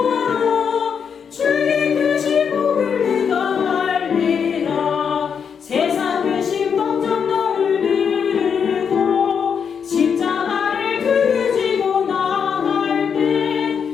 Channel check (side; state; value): right; quieter; 6.9 dB